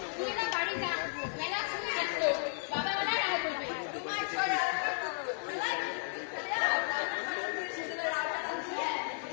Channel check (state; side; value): silent; right; 55 dB below the other